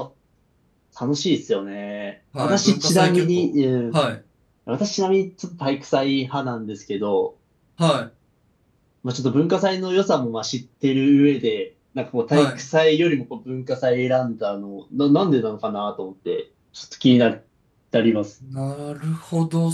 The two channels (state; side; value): identical; both; correlation 1.00